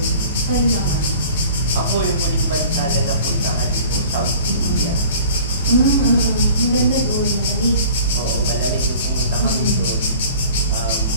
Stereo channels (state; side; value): inverted; both; correlation -0.46